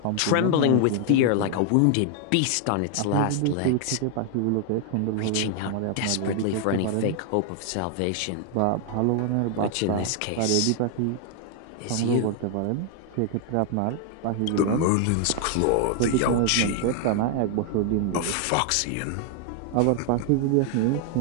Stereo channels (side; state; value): both; different; correlation 0.00